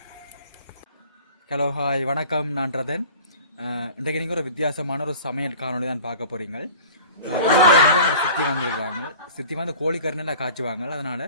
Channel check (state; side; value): inverted; both; correlation -0.43